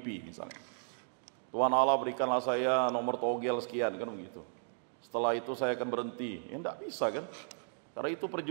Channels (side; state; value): left; silent; digital silence